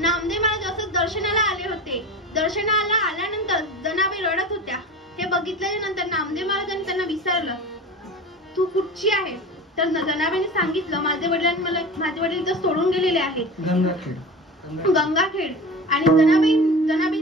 महाराज असं दर्शनाला आले होते. दर्शनाला आल्यानंतर जनाबाई रडत होत्या. हे बघितल्याच्या नंतर नामदेव महाराजांनी त्यांना विचारलं, तू कुठची आहे? तर जनाबाईने सांगितलं, माझे वडील इथं सोडून गेलेले आहेत, गंगाखेड. आणि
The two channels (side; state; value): both; normal; correlation 0.32